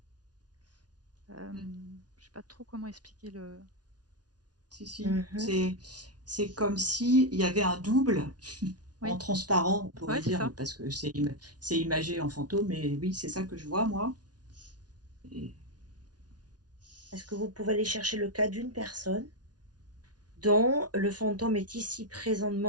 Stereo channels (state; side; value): late; left; 0.69 ms